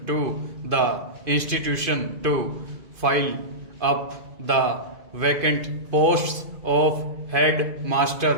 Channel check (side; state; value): left; late; 2.5 ms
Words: to the institution to fill up the vacant posts of head